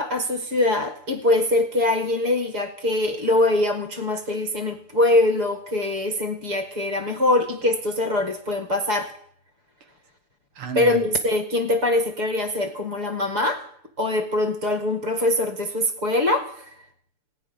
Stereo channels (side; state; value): left; late; 6.9 ms